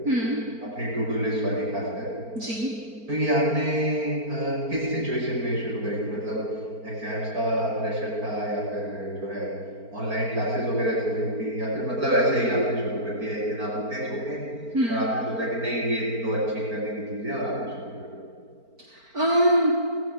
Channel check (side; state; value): left; late; 4.4 ms